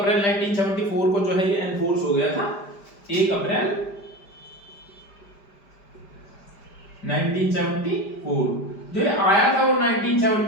1974 को जो है ये एनफोर्स हो गया था। 1 अप्रैल 1974 जो ये आया था वो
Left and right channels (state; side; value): late; right; 5.0 ms